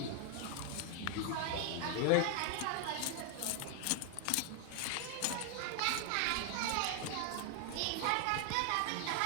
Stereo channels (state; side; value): different; both; correlation 0.00